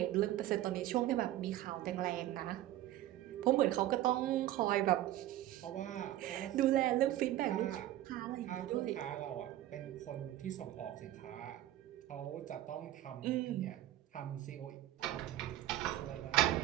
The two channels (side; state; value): left; quieter; 14.0 dB